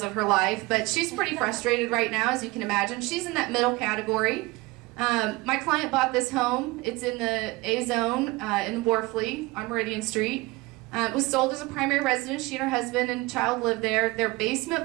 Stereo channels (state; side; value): quieter; left; 22.4 dB